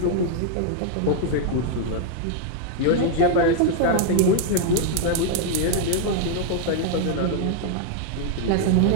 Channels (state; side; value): different; both; correlation 0.00